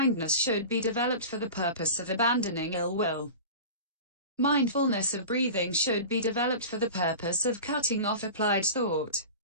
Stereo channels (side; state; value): both; inverted; correlation -0.33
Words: should be developed for the purpose of abandoning ill will. Mindfulness of breathing should be developed for the purpose of cutting off applied thought.